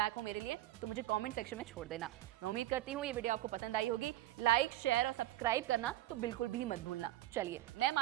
हो मेरे लिए, तो मुझे कॉमेंट सेक्शन में छोड़ देना। मैं उम्मीद करती हूँ ये वीडियो आपको पसंद आई होगी। लाइक, शेयर और सब्सक्राइब करना तो बिल्कुल भी मत भूलना। चलिए, मैं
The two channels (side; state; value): left; quieter; 15.2 dB